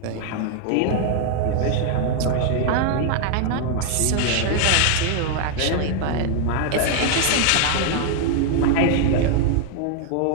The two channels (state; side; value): different; both; correlation 0.00